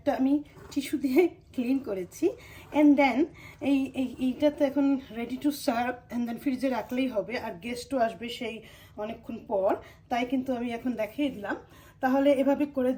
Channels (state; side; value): identical; both; correlation 1.00